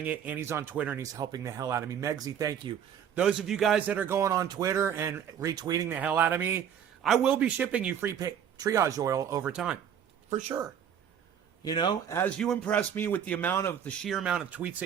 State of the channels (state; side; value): quieter; left; 8.7 dB